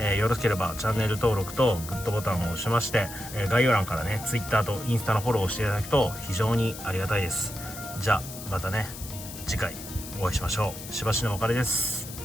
よろしければチャンネル登録とグッドボタンを押しまして、概要欄からね、Twitter とインスタのフォローをしていただくと非常にありがたいです。じゃあ、またね、次回お会いしましょう。しばしのお別れです。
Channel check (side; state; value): left; noise; hiss, 12 dB below the sound